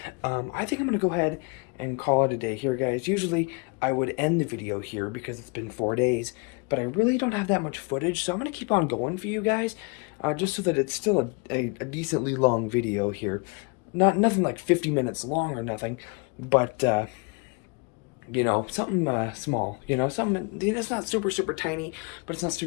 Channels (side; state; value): right; quieter; 32.0 dB